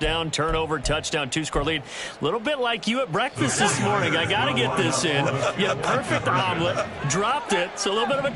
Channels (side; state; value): both; identical; correlation 1.00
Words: turnover, touchdown, 2-score lead. A little bit like you at breakfast this morning. I got to get this in. You had a perfect omelet, dropped it, so a little bit of a